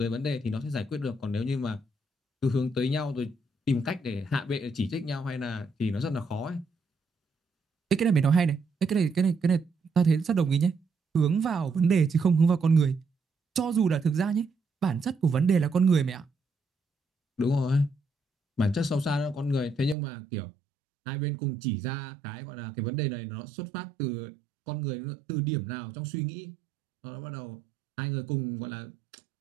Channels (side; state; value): left; drops out; at 20.0 s